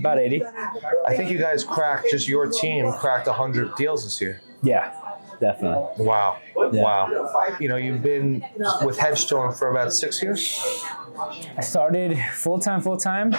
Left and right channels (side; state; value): both; inverted; correlation -1.00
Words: 80. I think you guys just your team cracked 100 deals this year. Yeah, definitely. Wow. Yeah. Wow. You know, you've been with Hedgestone for about 6 years? I started full-time,